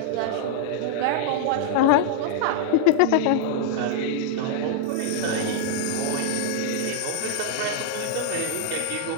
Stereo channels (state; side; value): different; both; correlation -0.01